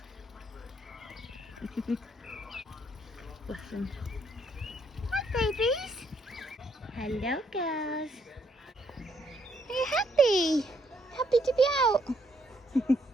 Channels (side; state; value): both; normal; correlation 0.71